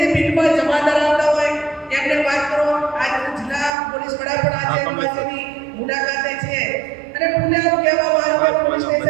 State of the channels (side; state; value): left; drops out; at 3.7 s